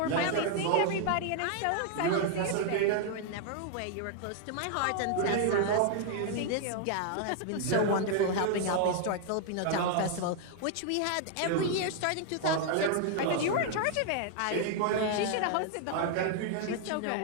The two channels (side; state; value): both; different; correlation 0.00